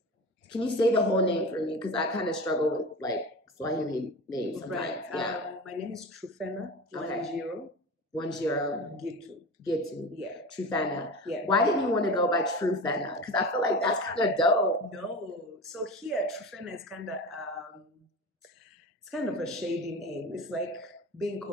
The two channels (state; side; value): normal; both; correlation 0.30